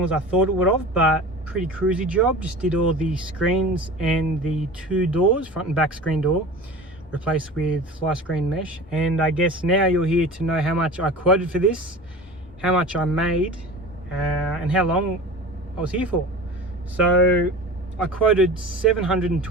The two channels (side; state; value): both; normal; correlation 0.36